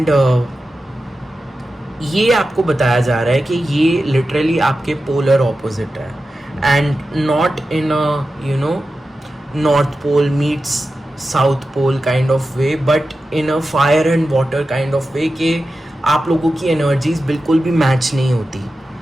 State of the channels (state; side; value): normal; both; correlation 0.92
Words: ये आपको बताया जा रहा है कि ये लिटरली आपके पोलर ऑपोजिट है, and not in a you know north pole meets south pole kind of way, but in a fire and water kind of way, कि आप लोगों की एनर्जीज बिल्कुल भी मैच नहीं होती।